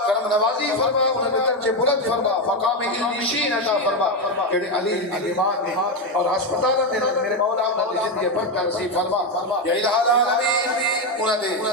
کرم نوازی فرما انہوں نے درجے بلند فرما مقام علمشین عطا فرما کہ علی ایمان نے اور ہسپتال میں میرے مولا انہوں نے زندگی برکت نصیب فرما یا الہ العالمین انہوں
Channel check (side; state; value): both; normal; correlation 0.09